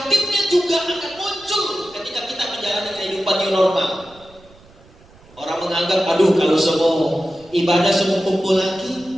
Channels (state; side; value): noise; right; rumble, 26 dB below the sound